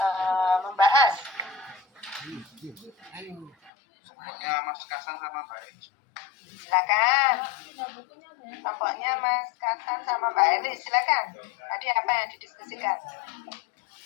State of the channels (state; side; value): drops out; right; at 3.7 s